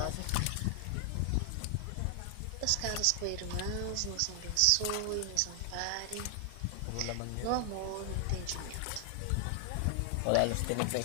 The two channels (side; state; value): both; different; correlation 0.00